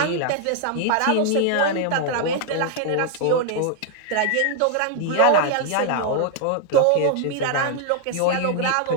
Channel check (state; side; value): different; both; correlation 0.00